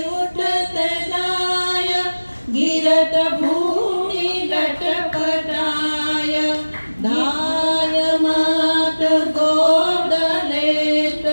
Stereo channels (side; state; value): both; inverted; correlation -1.00